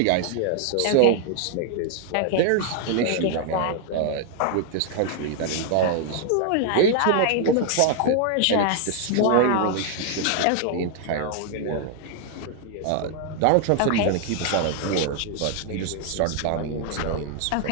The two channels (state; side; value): different; both; correlation 0.00